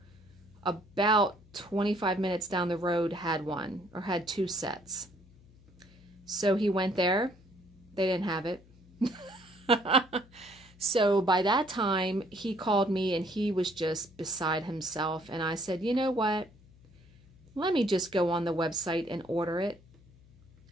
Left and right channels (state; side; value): noise; left; hum, 26 dB below the sound